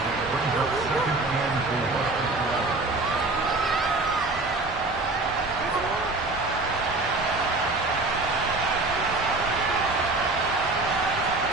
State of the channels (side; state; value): left; quieter; 3.2 dB